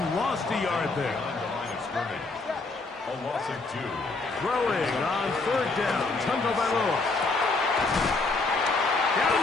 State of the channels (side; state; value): right; quieter; 3.6 dB